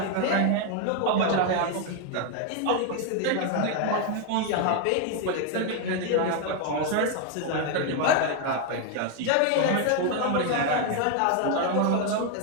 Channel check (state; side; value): different; both; correlation 0.01